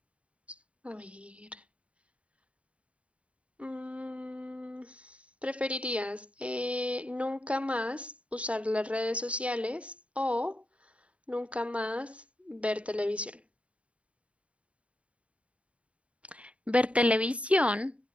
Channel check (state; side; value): late; left; 0.063 ms